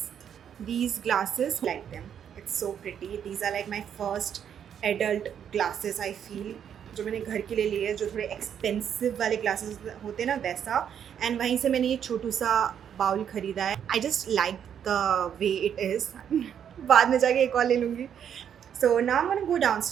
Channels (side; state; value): left; quieter; 8.7 dB